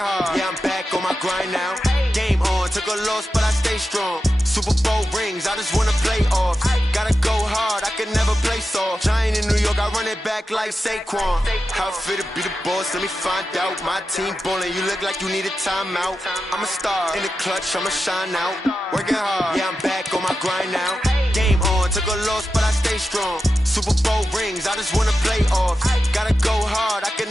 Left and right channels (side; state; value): both; normal; correlation 0.91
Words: yeah, I'm back on my grind now. Game on, took a loss, but I stay strong. Super Bowl rings, I just wanna play off. Gotta go hard, I can never play soft. Giant in New York, I run it back like Saquon. How fit to be the boss, let me find out. My team ballin', you look like you need a timeout. I'm a star in the clutch, I'ma shine out. Working hard, yeah, I'm back on my grind now. Game on, took a loss, but I stay strong. Super Bowl rings, I just wanna play off. Gotta go hard, I can